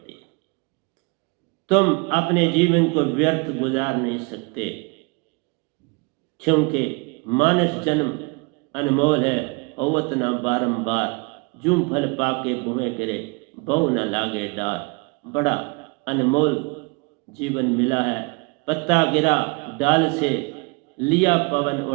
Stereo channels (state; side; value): quieter; left; 29.7 dB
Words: है। तुम अपने जीवन को व्यर्थ गुजार नहीं सकते, क्योंकि मानस जन्म अनमोल है। अवत ना बारंबार, जूं फल पाके बुहे गिरे, बहु न लागे डार। बड़ा अनमोल जीवन मिला है। पत्ता गिरा डाल से, लिया पवन